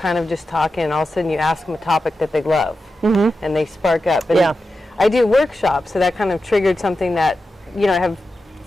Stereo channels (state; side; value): normal; both; correlation 0.91